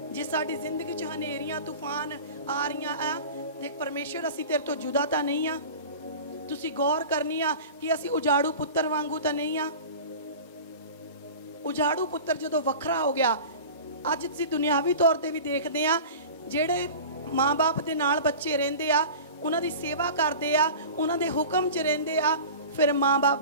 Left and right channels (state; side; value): inverted; both; correlation -0.36